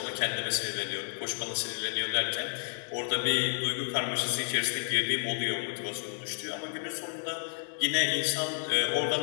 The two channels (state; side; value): silent; right; digital silence